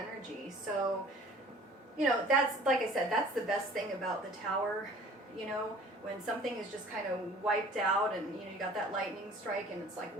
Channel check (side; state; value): both; normal; correlation 0.49